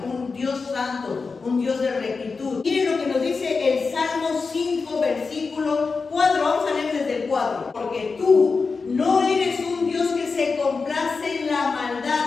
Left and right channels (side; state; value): right; quieter; 4.6 dB